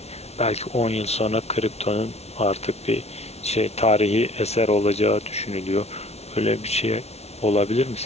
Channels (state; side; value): late; right; 0.31 ms